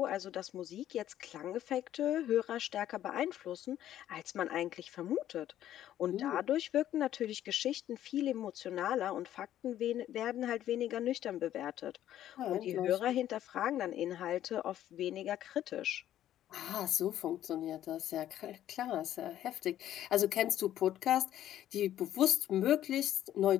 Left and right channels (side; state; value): right; quieter; 12.0 dB